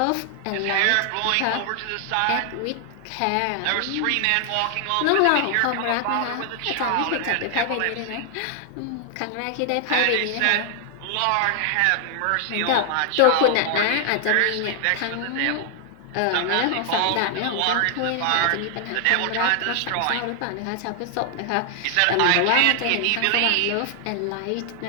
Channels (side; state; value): both; different; correlation 0.00